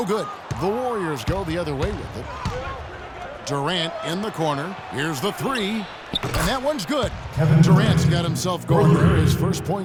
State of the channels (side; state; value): both; identical; correlation 1.00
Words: good. The Warriors go the other way with it. Durant in the corner. Here's the 3. And that one's good. Durant's got himself going there. His first